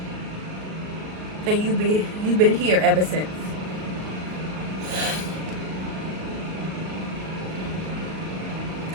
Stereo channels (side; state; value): left; late; 38 ms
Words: And you've been here ever since.